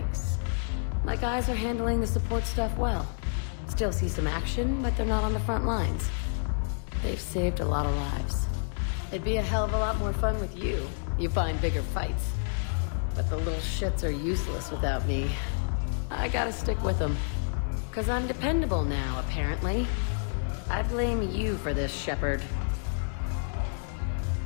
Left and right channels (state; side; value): silent; right; digital silence